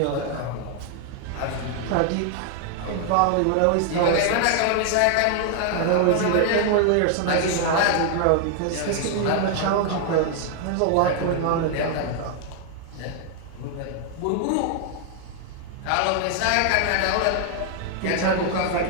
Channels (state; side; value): different; both; correlation 0.00